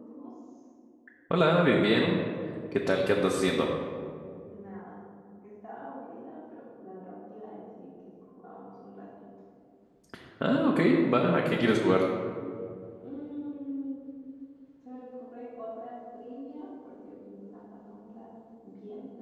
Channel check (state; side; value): identical; both; correlation 1.00